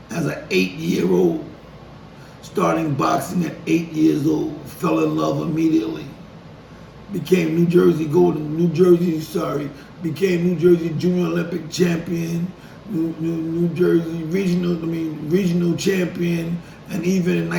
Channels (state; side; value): identical; both; correlation 1.00